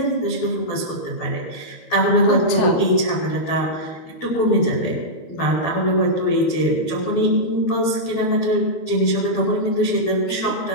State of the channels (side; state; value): right; late; 12 ms